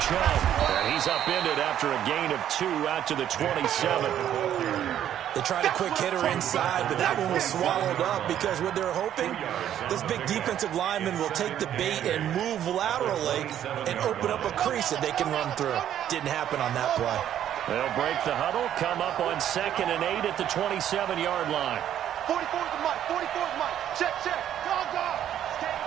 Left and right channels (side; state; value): left; quieter; 10.7 dB